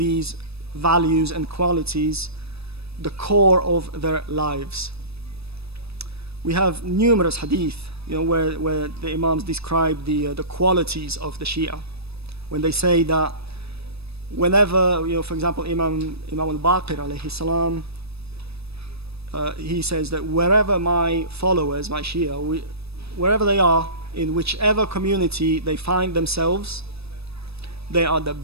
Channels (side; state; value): left; late; 0.78 ms